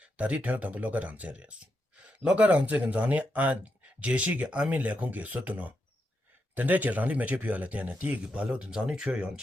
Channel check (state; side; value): normal; both; correlation 0.84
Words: 다디 태어담 로가랑 제레스 로가랑 제근 자네 아 제시게 아미 레콘게 소도노 근데 라리 매체 피할 때는 디기 발로든 자네 최연